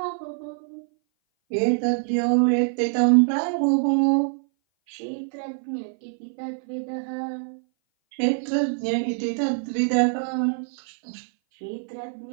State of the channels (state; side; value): silent; left; 58 dB below the other